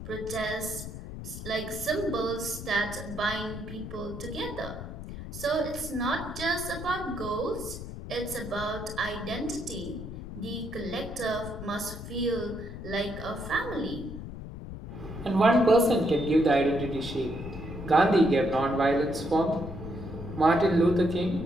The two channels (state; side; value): noise; left; rumble, 10 dB below the sound